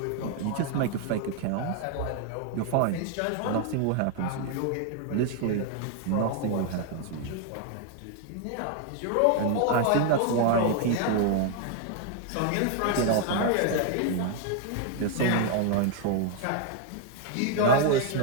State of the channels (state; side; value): different; both; correlation 0.01